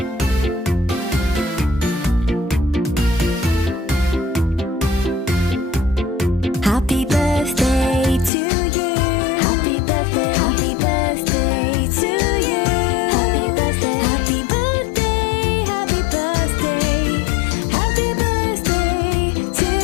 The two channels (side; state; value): right; drops out; at 8.3 s